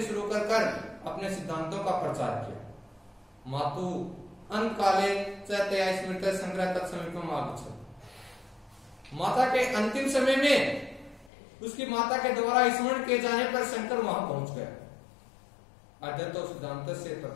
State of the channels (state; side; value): drops out; right; at 11.3 s